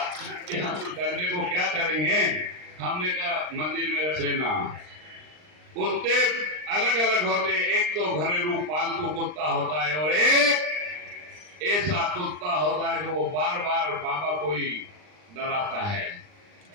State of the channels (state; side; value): late; left; 39 ms